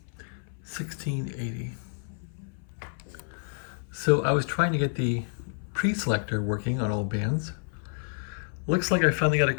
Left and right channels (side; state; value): right; silent; 58 dB below the other